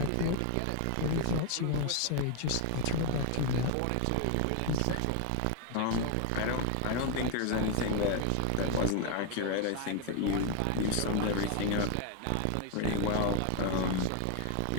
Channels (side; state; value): both; different; correlation 0.00